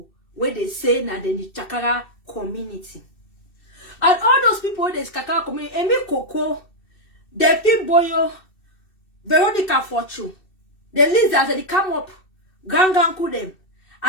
where they say now in the Chakara community? And all those people in the Chakara community, Emi Coco, Delphine Boyo, Veronica Fortune, the lizards that they come up, Ganganku them,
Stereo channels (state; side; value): late; right; 2.7 ms